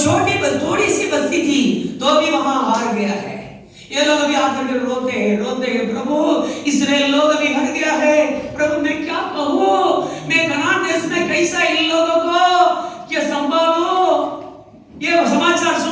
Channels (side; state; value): both; identical; correlation 1.00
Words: थोड़ी सी बस्ती थी, तो भी वहां हार गया है। ये लोग अभी आकर के रोते हैं प्रभु इस्राएल लोग अभी हट गया है, प्रभु मैं क्या कहूँ, मैं कनान देश में कैसा इन लोगों को क्या संभालूं? ये समाचार